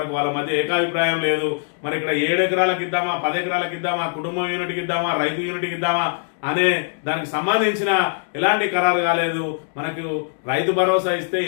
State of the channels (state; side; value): silent; right; digital silence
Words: వాళ్ళ మధ్య ఏకాభిప్రాయం లేదు. మరి ఇక్కడ 7 ఎకరాలకు ఇద్దామా, 10 ఎకరాలకు ఇద్దామా, కుటుంబం యూనిట్కి ఇద్దామా, రైతు యూనిట్కి ఇద్దామా అనే దానికి సంబంధించిన ఎలాంటి ఖరారు కాలేదు. మనకు రైతు భరోసా ఇస్తే